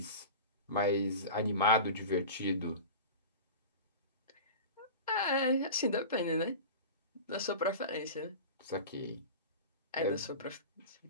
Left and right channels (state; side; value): inverted; both; correlation -0.31